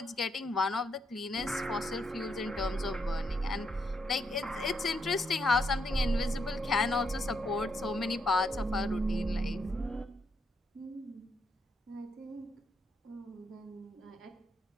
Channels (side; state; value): both; normal; correlation 0.78